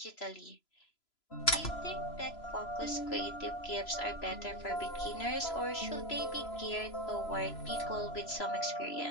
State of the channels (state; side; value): late; right; 3.0 ms